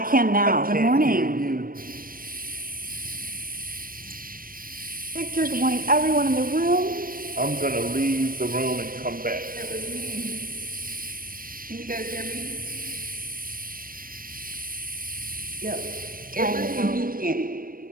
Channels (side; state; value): left; late; 0.41 ms